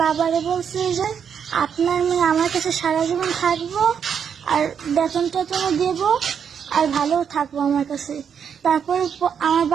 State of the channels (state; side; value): quieter; left; 7.5 dB